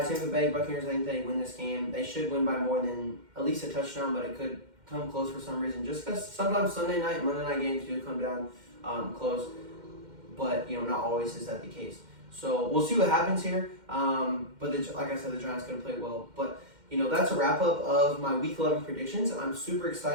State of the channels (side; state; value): left; late; 2.1 ms